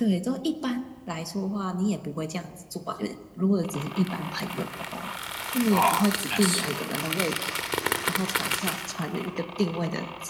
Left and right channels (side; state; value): both; identical; correlation 1.00